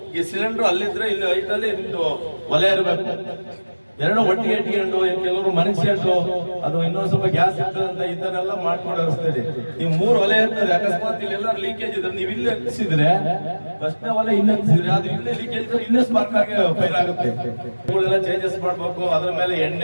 ಈ ಸಿಲಿಂಡರ್ ಅಲ್ಲಿದ್ರೆ ಇಲ್ಲಿ ಹೈಟ್ ಅಲ್ಲಿ ನಿಮ್ದು ಒಲೆ ಇರಬೇಕು. ಎರಡು ಒಟ್ಟಿಗೆ ಇಟ್ಕೊಂಡು ಕೆಲವರು ಮನುಷ್ಯಂಡು ಅದು ಇನ್ನೊಂದ್ ಸ್ವಲ್ಪ ಗ್ಯಾಸ್ ಇರ್ತದೆ ಅಂತ ಈ ತರ ಎಲ್ಲ ಮಾಡ್ಕೊಂಡು ಹರಿಸ್ತೀರಿ. ನೀವು 3 ಒಲೆ ಇರ್ತದೆ. ಅಕಸ್ಮಾತ್ ಇಲ್ಲಿ ಎಲ್ಲರೂ ಲೀಕೇಜ್ ಇದ್ರೆ ನೀವು ಇಲ್ಲಿ ಹತ್ತಿಸಿದ್ರೆ ಫಸ್ಟ್ ಒಲೆ ಇಲ್ಲಿ ಹತ್ತಿಸಿದ್ರೆ ಅದು ಇಲ್ಲೇ ಲೀಕೇಜ್ ಇದ್ರೆ ಇನ್ನೂ ಸ್ಪಾರ್ಕ್ ಆಗಿ ಫೈರ್ ಆಗುತ್ತೆ. ಇವುಗಳೆಲ್ಲ ಚೇಂಜಸ್ ಮಾಡ್ಬೇಕು. ಅದ್ರ ಮೇಲೆ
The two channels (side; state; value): both; inverted; correlation -1.00